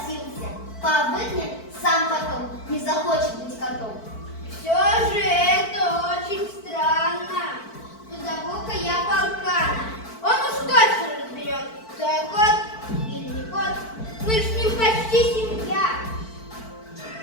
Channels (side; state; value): right; late; 4.5 ms